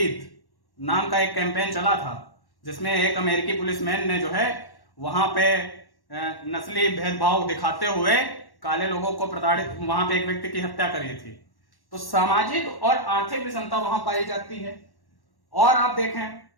नाम का एक कैंपेन चला था, जिसमें एक अमेरिकी पुलिसमैन ने जो है वहां पे नस्ली भेदभाव दिखाते हुए काले लोगों को प्रताड़ित, वहां पे एक व्यक्ति की हत्या करी थी। तो सामाजिक और आर्थिक विषमता वहां पाई जाती है। और आप देखें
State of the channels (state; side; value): late; right; 1.1 ms